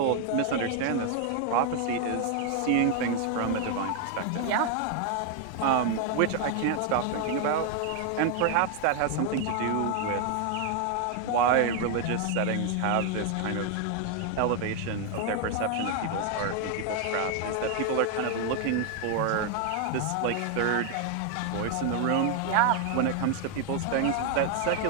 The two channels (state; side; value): different; both; correlation 0.01